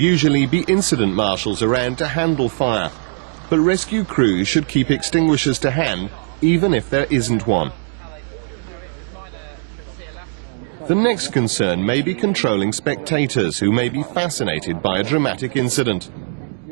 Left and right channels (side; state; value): left; silent; 59 dB below the other